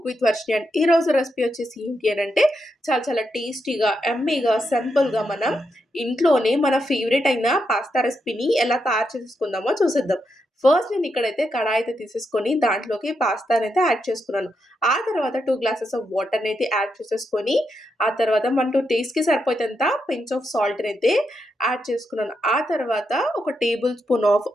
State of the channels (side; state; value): both; normal; correlation 0.83